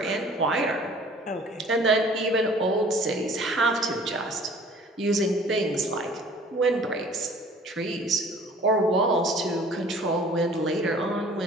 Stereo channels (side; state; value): both; normal; correlation 0.51